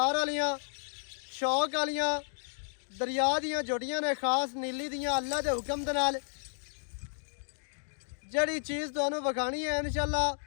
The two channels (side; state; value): right; silent; digital silence